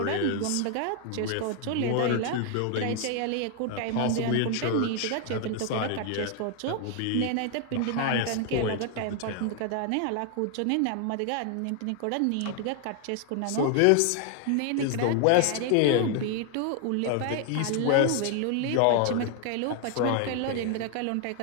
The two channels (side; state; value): both; different; correlation 0.00